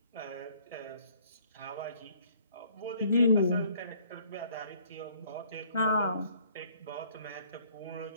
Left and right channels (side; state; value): both; inverted; correlation -0.60